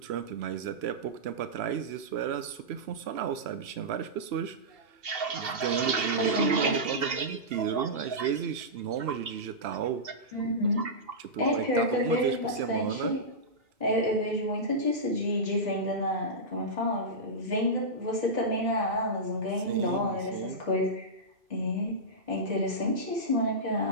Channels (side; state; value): left; late; 2.8 ms